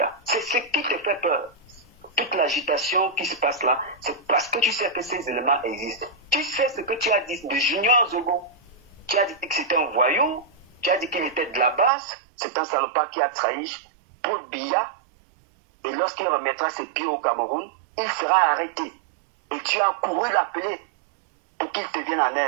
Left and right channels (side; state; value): left; drops out; at 11.9 s